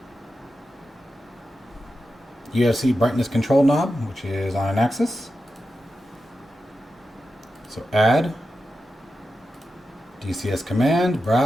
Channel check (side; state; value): both; normal; correlation 0.90